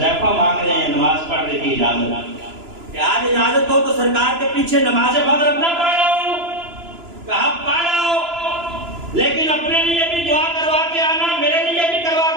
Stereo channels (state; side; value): late; left; 2.9 ms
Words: مانگ رہے ہیں نماز پڑھنے کی اجازت، کہ آج اجازت ہو تو سرکار کے پیچھے نماز مغرب نہ پڑھاؤں؟ کہا پڑھاؤ، لیکن اپنے لیے بھی دعا کروا کے آنا، میرے لیے بھی کروا